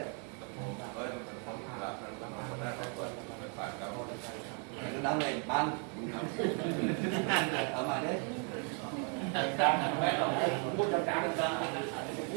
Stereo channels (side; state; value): left; quieter; 39.6 dB